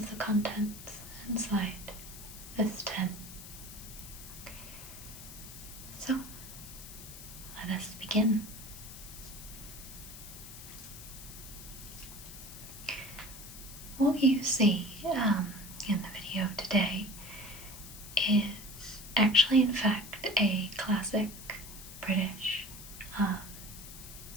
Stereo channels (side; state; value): left; noise; hiss, 14 dB below the sound